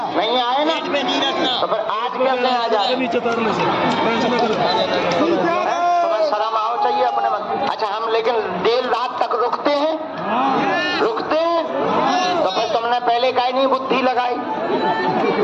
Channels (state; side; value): identical; both; correlation 1.00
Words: नहीं आए ना, तो फिर आज कैसे आ जाए? तुम्हें शर्म आओ चाहिए अपने मन। अच्छा, हम लेकिन देर रात तक रुकते हैं, तो फिर तुमने पहले काहे नहीं बुद्धि लगाई?